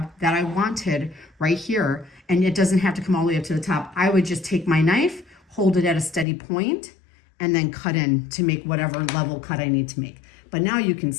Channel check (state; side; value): drops out; right; at 6.2 s